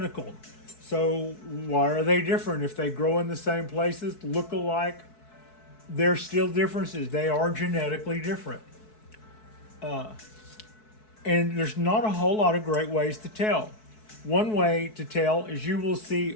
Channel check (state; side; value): late; right; 4.6 ms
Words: So why are they different? If they grow in the same places, look alike, there's still differences. They are genetically different. And there's not a whole lot of great ways to tell. One way to tell is you will